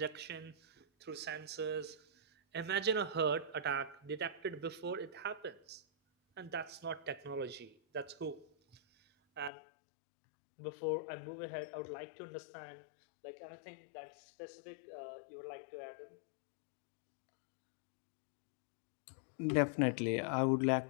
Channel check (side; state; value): right; drops out; at 9.5 s